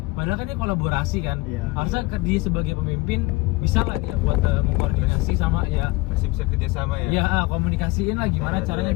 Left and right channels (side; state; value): right; quieter; 22.0 dB